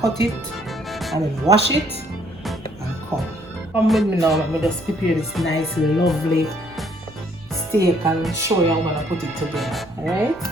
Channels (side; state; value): right; noise; rumble, 24 dB below the sound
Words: cut it and then wash it and come with me now. Let me just prepare this nice, lovely steak and show you how I'm gonna put it together. Alright?